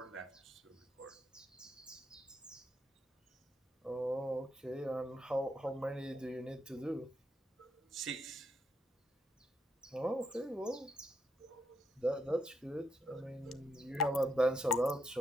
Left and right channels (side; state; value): both; normal; correlation 0.79